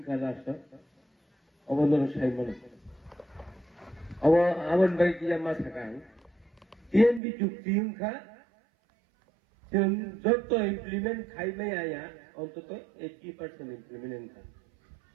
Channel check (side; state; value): left; drops out; at 7.2 s